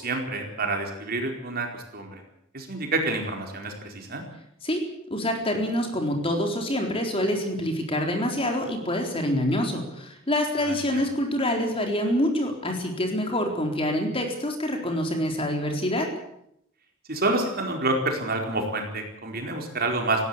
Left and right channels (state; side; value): normal; both; correlation 0.37